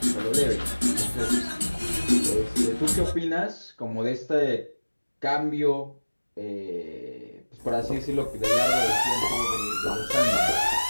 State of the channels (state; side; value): inverted; both; correlation -1.00